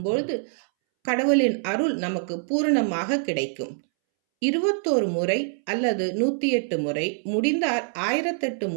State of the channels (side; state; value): left; silent; 62 dB below the other